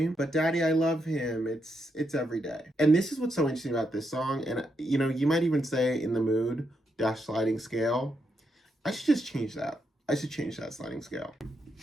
But Daddy, I Love Him. It's Every Day. And this is what's so interesting about this song. And, you know, you might even say In the Mood - sliding scale. I should just change that. I should change that sliding scale.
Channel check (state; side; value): normal; both; correlation 0.81